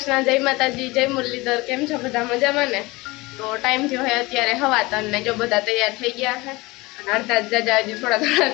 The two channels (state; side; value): quieter; right; 22.4 dB